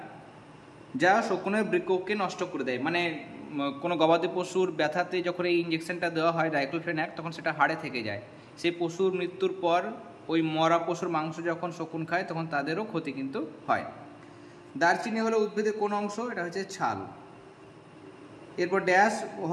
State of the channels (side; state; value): both; identical; correlation 1.00